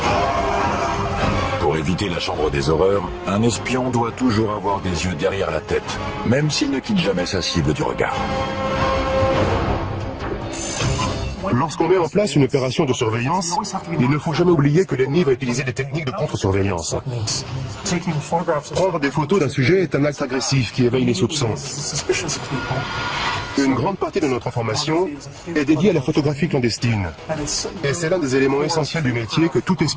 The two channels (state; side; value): identical; both; correlation 1.00